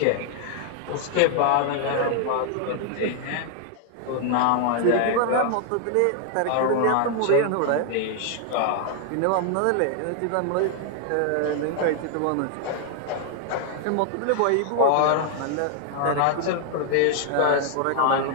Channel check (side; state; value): both; different; correlation 0.00